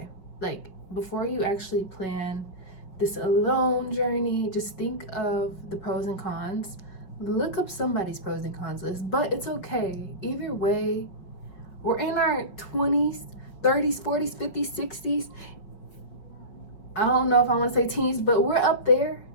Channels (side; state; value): right; late; 5.3 ms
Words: Like, before you actually plan this alone journey, just think of the pros and cons. Look up somebody's pros and cons list, but it's okay. Either way, we're in our 20s, 30s, 40s, 50s, 60s. I don't know if I want to say teens, but we're up there